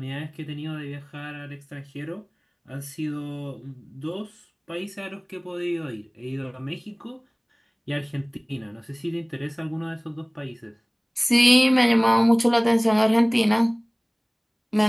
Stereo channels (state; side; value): identical; both; correlation 1.00